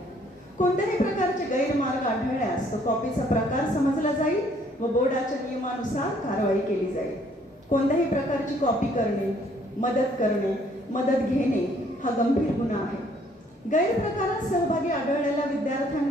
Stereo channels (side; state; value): both; normal; correlation 0.63